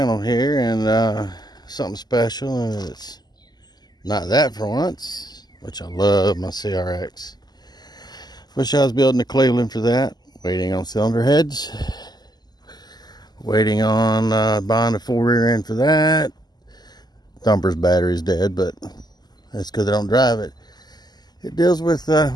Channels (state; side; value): late; right; 0.20 ms